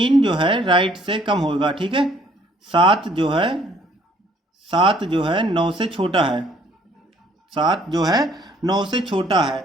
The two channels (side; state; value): both; normal; correlation 0.62